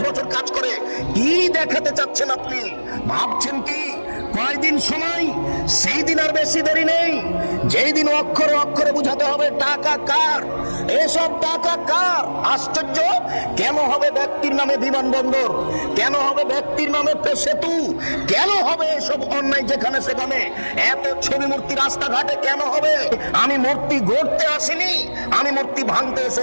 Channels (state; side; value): inverted; both; correlation -1.00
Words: বছর কাজ করে। কি দেখাতে চাচ্ছেন আপনি? ভাবছেন কি কয়দিন সময়? সেই দিন আর বেশি দেরি নেই, যেই দিন অক্ষরে অক্ষরে বুঝাতে হবে টাকা কার, এসব টাকা কার। আশ্চর্য, কেন হবে ব্যক্তির নামে বিমানবন্দর? কেন হবে ব্যক্তির নামে সেতু? কেন হবে এসব অন্যায় যেখানে সেখানে? এত ছবি মূর্তি রাস্তাঘাটে কেন হবে? আমি মূর্তি গড়তে আসিনি, আমি মূর্তি ভাঙতে